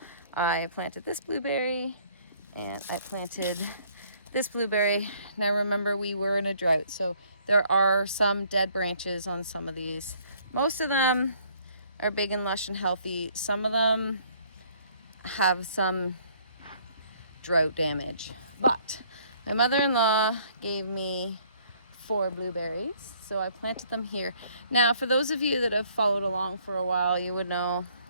I planted this blueberry and I planted this blueberry. Now remember, we were in a drought, so there are some dead branches on some of these. Most of them are big and lush and healthy. Some of them have some drought damage. But my mother-in-law gave me 4 blueberries, so I planted them here. Now, for those of you that have followed along for a while, you would know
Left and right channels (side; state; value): both; inverted; correlation -0.61